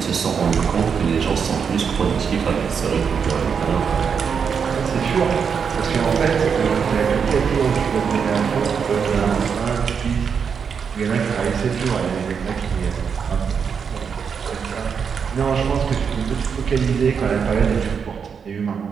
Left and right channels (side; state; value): left; quieter; 6.5 dB